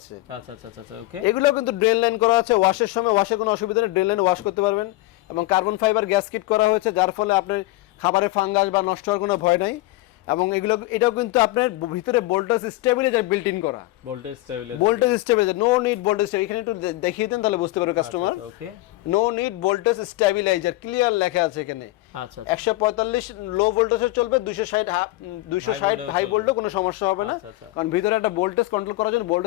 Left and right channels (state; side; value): quieter; right; 19.0 dB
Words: আচ্ছা আচ্ছা আচ্ছা ওকে, এগুলো কিন্তু ড্রেন লাইন করা আছে, ওয়াশের সময় ওয়াশে কোনো অসুবিধা নেই, ড্রেন লাইন ওয়াশ করতে পারবেন, এবং কার্বন ফাইবার গ্যাস কিট করা হয়েছে, যার ফলে আপনার খাবারে ফাঙ্গাস বা নষ্ট হওয়ার কোনো ভয় নাই। এবং এটাও কিন্তু আপনার ভিতরে ভোল্টেজ স্টেবিলাইজার বিল্ট ইন করা, voltage stabiliser, no need voltage, এখানে একটু দেখিয়ে দেন তাহলে বুঝতে পারবে customer. Okay, no need voltage stabiliser clear লেখা আছে এখানে। আচ্ছা 145 লো ভোল্টেজে চলবে, 260 হাই ভোল্টে কোনো সমস্যা হবে না, কারণ ভিতরে একটা ভোল্টেজ কন্ট্রোল করার জন্য